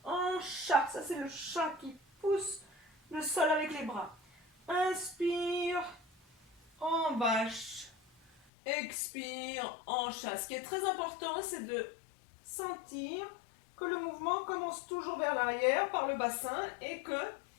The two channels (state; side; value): drops out; right; at 8.4 s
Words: En chat. Ça, c'est le chat qui pousse le sol avec les bras. Inspire. En vache. expire, hanche. Ce qui est très important, c'est de sentir que le mouvement commence toujours vers l'arrière par le bassin et que